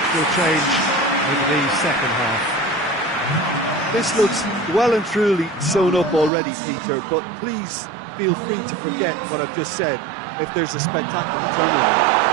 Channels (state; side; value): drops out; left; at 6.3 s